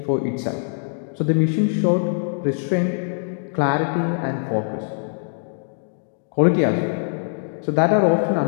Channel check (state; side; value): silent; right; digital silence